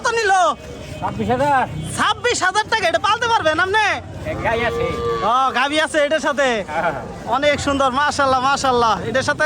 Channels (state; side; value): identical; both; correlation 1.00